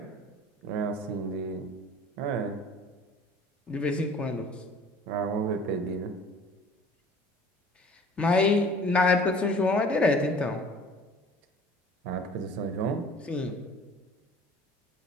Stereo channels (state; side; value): normal; both; correlation 0.48